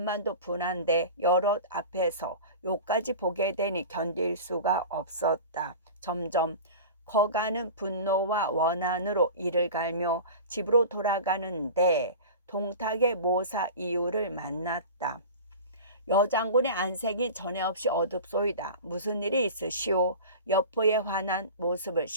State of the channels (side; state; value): both; inverted; correlation -0.34